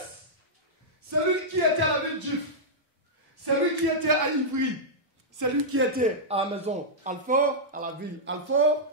celui qui était à la ville d'If, celui qui était à Ivry, celui qui était à la maison Alfort, à la ville Alfort,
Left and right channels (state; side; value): normal; both; correlation -0.10